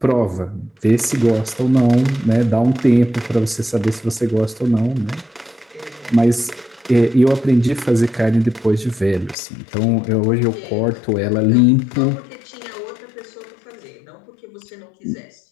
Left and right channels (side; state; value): right; drops out; at 9.3 s